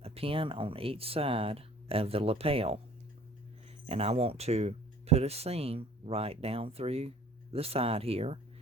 a pin on each side of the lapel, and I want to put a seam right down through the side here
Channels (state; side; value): normal; both; correlation 0.51